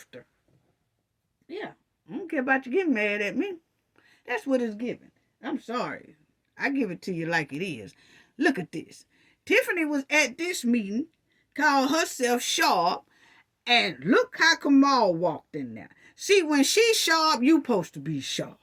Yeah. I don't care about you getting mad at me. That's what it's given. I'm sorry. I give it to you like it is. Look at this. Tiffany was at this meeting, called herself sharp, and look how Kamal walked in there. See, when she's sharp, you supposed to be sharp.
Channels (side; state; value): both; identical; correlation 1.00